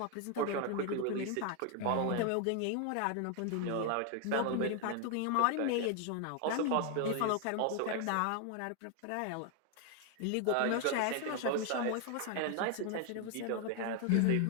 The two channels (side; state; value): both; different; correlation 0.01